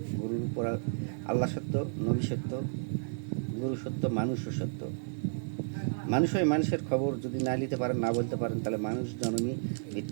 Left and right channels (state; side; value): silent; left; 56 dB below the other